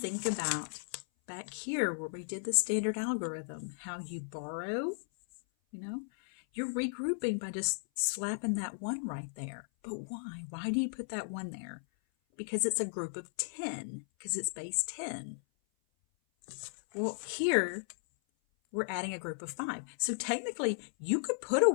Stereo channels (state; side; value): silent; right; 54 dB below the other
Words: about back here where we did the standard algorithm, how you borrow, you're regrouping by just slapping that 1 right there. But why? Why do you put that 1 there? Because it's a group of 10, because it's base 10. Well, here we're adding a group of 5. So technically, you could put a